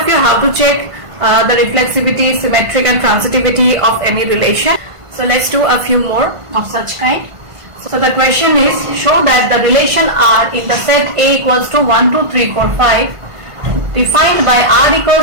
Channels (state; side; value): late; left; 1.5 ms